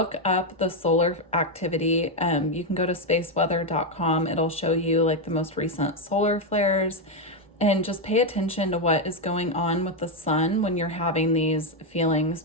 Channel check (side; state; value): both; normal; correlation 0.04